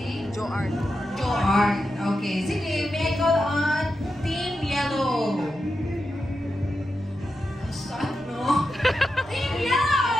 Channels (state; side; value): noise; right; rumble, 24 dB below the sound